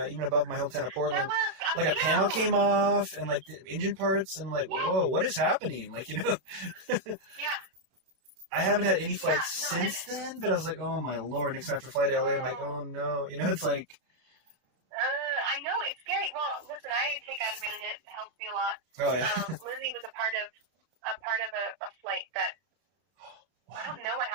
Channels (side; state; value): left; late; 31 ms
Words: even above my hometown of Portland, like, a panel came off and, like, the engine parts, and I'm like, whoa, what is happening? Like, you know? Yeah. I haven't had any flights since then, but I was like, oh, my Lord. Next after flight to LA, I'm like, oh, no. You know, it's like... I know, it's scary. Well, listen, I take Ativan and it helps me a lot. Oh, yeah. Lizzie was a part of a flight that... I don't know what